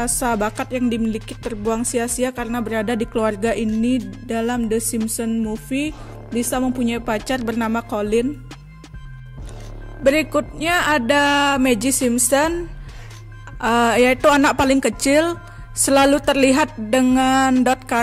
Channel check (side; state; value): both; identical; correlation 1.00